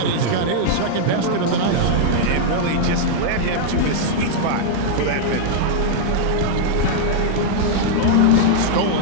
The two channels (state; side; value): different; both; correlation -0.01